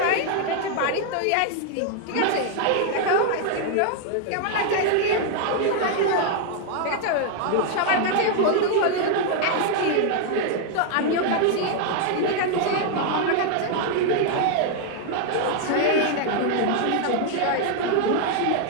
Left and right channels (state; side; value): different; both; correlation 0.00